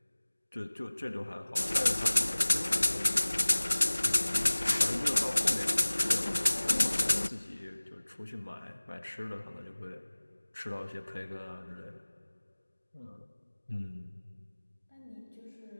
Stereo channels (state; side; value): inverted; both; correlation -1.00